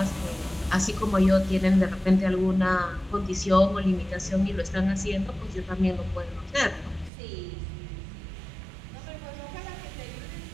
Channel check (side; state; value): left; drops out; at 7.1 s